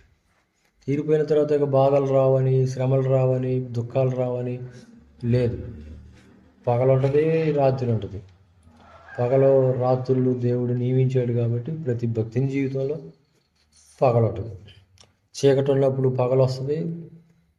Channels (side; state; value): both; identical; correlation 1.00